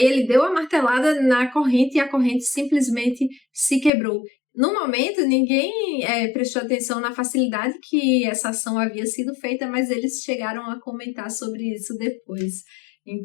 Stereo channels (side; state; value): right; drops out; at 3.9 s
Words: ele deu a martelada na corrente e a corrente simplesmente se quebrou. No momento, ninguém prestou atenção na facilidade que essa ação havia sido feita, mas eles chegaram a comentar sobre isso depois.